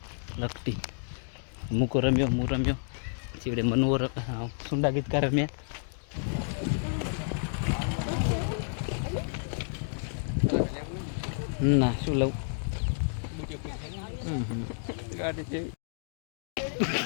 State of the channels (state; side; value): silent; right; digital silence